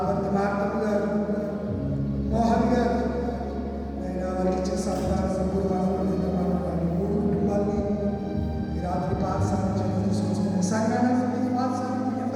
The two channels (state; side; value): identical; both; correlation 1.00